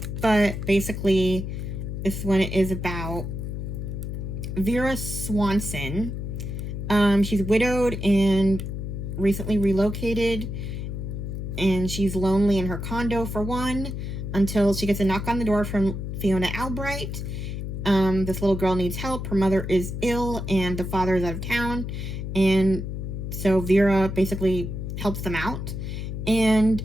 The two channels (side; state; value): left; noise; hum, 5 dB below the sound